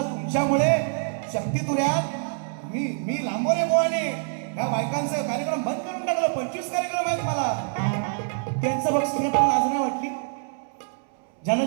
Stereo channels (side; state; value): left; silent; 61 dB below the other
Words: तुमच्यामुळे शक्तितुऱ्यात मी लांबोरे बुवाने ह्या बायकांचा कार्यक्रम बंद करून टाकलं. 25 कार्यक्रम आहेत मला. त्यांचं बक्षीस घेताना लाज नाही वाटली.